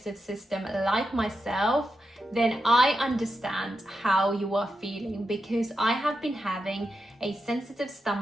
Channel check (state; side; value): normal; both; correlation 0.87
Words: system like myself, then I understand how you are feeling, because I have been having a sensitive